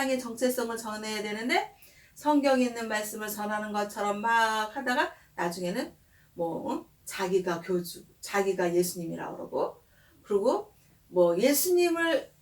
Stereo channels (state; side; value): identical; both; correlation 1.00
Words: 정체성을 전해야 되는데 성경에 있는 말씀을 전하는 것처럼 막 하다가 나중에는 자기가 예수님이라고 그러고 그리고 예수님을